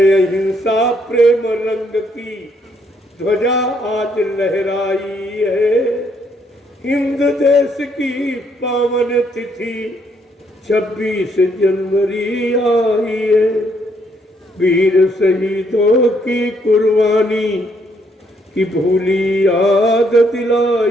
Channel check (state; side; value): normal; both; correlation 0.71